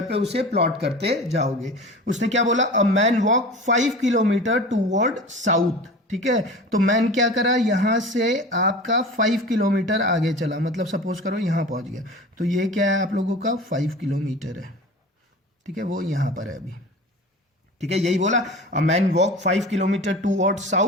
पे उसे प्लॉट करते जाओगे। उसने क्या बोला, a man walk 5 kilometre toward south. ठीक है। तो मैन क्या करा, यहाँ से आपका 5 किलोमीटर आगे चला, मतलब सपोज करो यहाँ पहुँच गया, तो ये क्या है आप लोगों का 5 किलोमीटर है, ठीक है, वो यहाँ पर है अभी, ठीक है, यही बोला। A man walk 5 kilometre toward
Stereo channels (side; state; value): both; normal; correlation 0.36